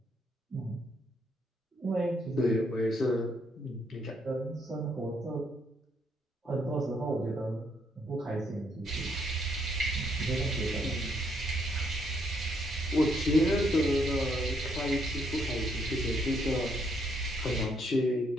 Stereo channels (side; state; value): both; normal; correlation 0.72